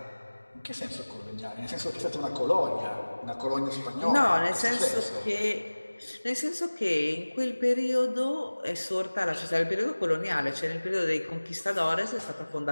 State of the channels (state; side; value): inverted; both; correlation -1.00